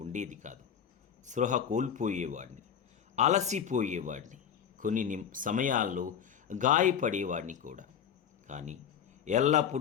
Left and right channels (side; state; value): right; quieter; 8.2 dB